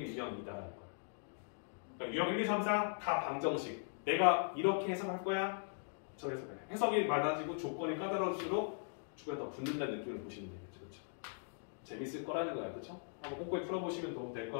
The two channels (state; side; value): silent; right; digital silence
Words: 유형 2다라는 거야. 그러니까 유형 1, 2, 3, 4 다 방정식. 내가 이렇게 해석할 거야? 저 해석해. 해석이 많아지고 조건이 까다로울수록 주변에 더 붙는다는 느낌을 보시면 되겠죠. 그렇죠? 재밌을 거라는 거야. 그렇죠? 한번 꼼꼼히 풀어보시면 도움 될